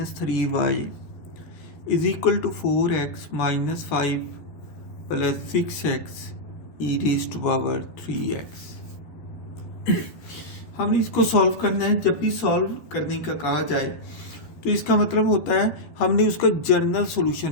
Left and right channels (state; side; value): late; right; 13 ms